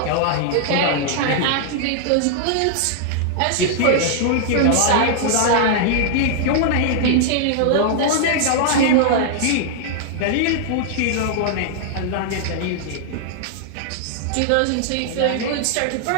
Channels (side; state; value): both; different; correlation -0.01